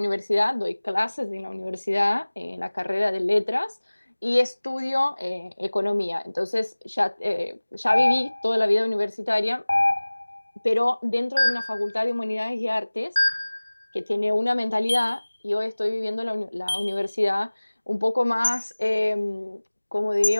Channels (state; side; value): inverted; both; correlation -1.00